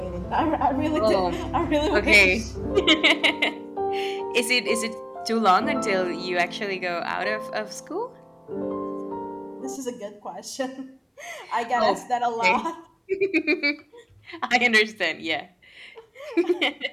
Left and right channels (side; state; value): both; identical; correlation 1.00